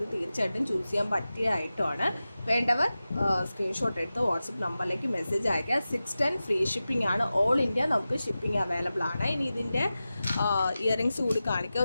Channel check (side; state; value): both; inverted; correlation -0.94